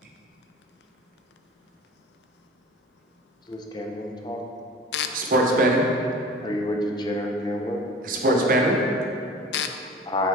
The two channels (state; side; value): normal; both; correlation 0.40